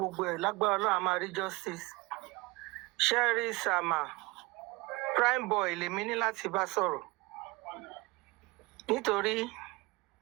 ẹ̀ lágbára Ọlọ́run a máa rí justice. Sherry Sama, Prime Boy lèmi ní láti bá sọ̀rọ̀. Nítorí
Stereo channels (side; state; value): left; quieter; 23.6 dB